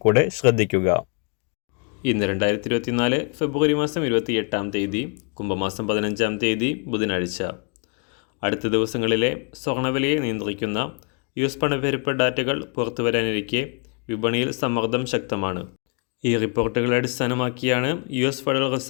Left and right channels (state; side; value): quieter; right; 37.9 dB